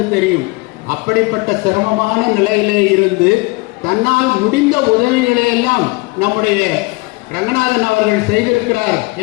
தெரியும். அப்படிப்பட்ட சிரமமான நிலையிலே இருந்து தன்னால் முடிந்த உதவிகளை எல்லாம் நம்முடைய ரங்கநாதன் அவர்கள் செய்திருக்கிறார்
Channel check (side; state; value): right; quieter; 25.1 dB